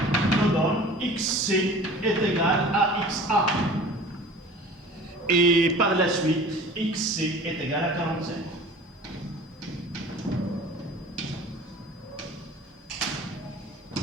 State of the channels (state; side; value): normal; both; correlation 0.43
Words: nous donne XC est égal à XA. Et par la suite, XC est égal à 45.